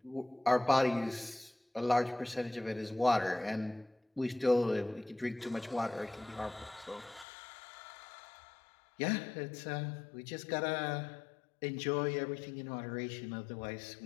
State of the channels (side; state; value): right; drops out; at 7.2 s